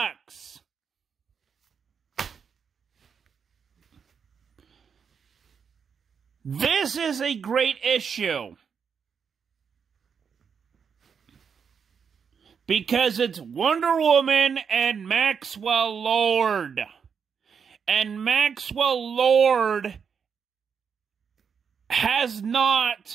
This is a great issue. Because it's Wonder Woman and Maxwell Lord. And Maxwell Lord has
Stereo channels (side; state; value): left; quieter; 6.6 dB